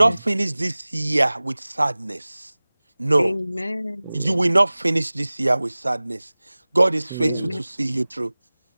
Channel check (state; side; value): inverted; both; correlation -0.99